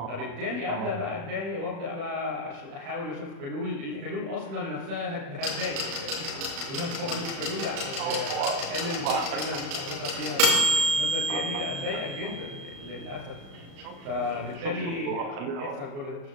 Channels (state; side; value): late; left; 36 ms